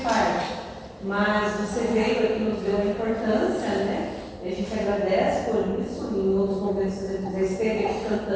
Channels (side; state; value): both; identical; correlation 1.00